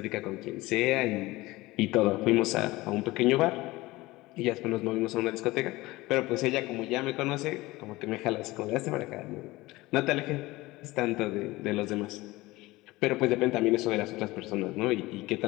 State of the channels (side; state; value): right; quieter; 19.9 dB